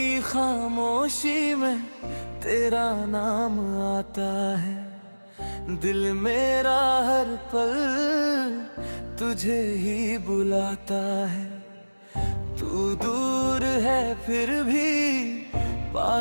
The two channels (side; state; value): both; inverted; correlation -1.00